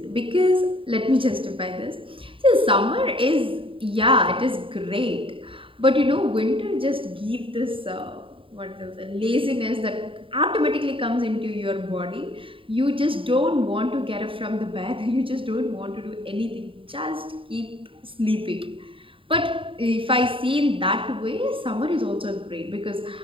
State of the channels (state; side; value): late; left; 0.25 ms